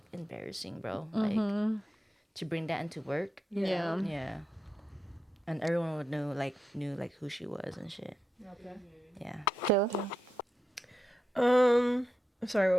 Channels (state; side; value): normal; both; correlation 0.87